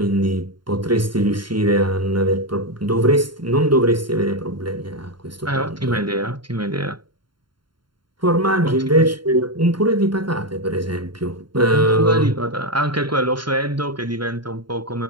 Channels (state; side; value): late; left; 0.72 ms